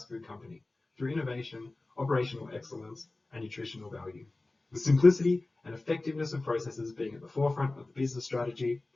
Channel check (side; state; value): right; quieter; 3.1 dB